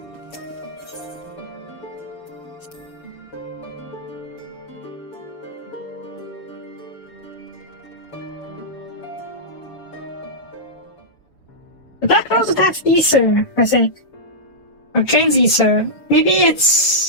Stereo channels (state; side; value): late; right; 7.0 ms